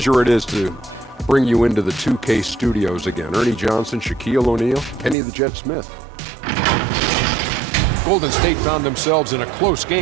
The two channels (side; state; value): left; drops out; at 5.2 s